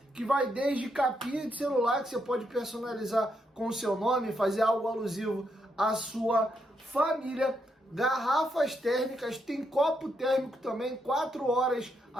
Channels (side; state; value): both; normal; correlation 0.79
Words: que vai desde capinha de celular, que você pode personalizar com o seu nome, fazer algo alusivo à sua família, garrafas térmicas, tem copo térmico também, 4 horas